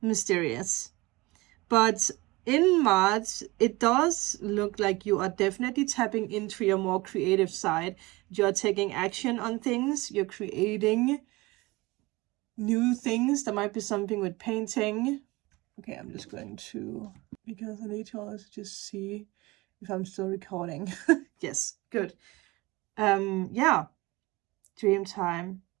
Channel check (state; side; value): quieter; left; 22.1 dB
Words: But in March, it does look like you are definitely tapping into your more creative side. You're taking action on things. You're creating new things. There might be something with painting. Okay, I'm just going to, because I need to also just see if I'm still recording. Yes, good. Yeah, dream time.